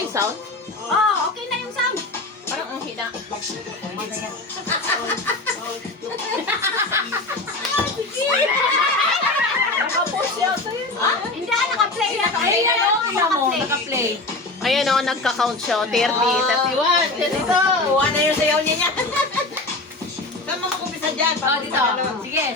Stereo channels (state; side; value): quieter; right; 3.0 dB